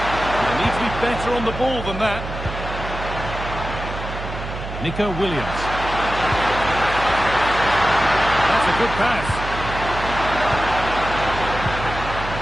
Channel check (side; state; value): right; noise; hum, 8 dB below the sound